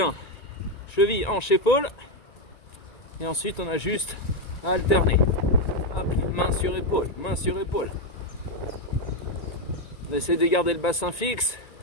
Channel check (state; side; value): late; right; 1.8 ms